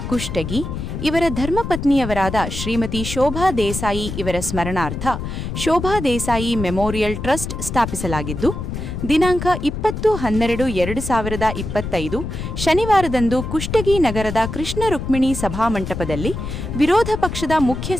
ಕುಷ್ಟಗಿ ಇವರ ಧರ್ಮಪತ್ನಿಯವರಾದ ಶ್ರೀಮತಿ ಶೋಭಾ ದೇಸಾಯಿ ಇವರ ಸ್ಮರಣಾರ್ಥ ಶೋಭಾ ದೇಸಾಯಿ ಮೆಮೋರಿಯಲ್ ಟ್ರಸ್ಟ್ ಸ್ಥಾಪಿಸಲಾಗಿದ್ದು, ದಿನಾಂಕ 20/12/2025 ಶನಿವಾರದಂದು ಕುಷ್ಟಗಿ ನಗರದ ಕೃಷ್ಣ ರುಕ್ಮಿಣಿ ಸಭಾಮಂಟಪದಲ್ಲಿ ವಿರೋಧ ಪಕ್ಷದ ಮುಖ್ಯ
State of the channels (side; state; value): left; noise; rumble, 6 dB below the sound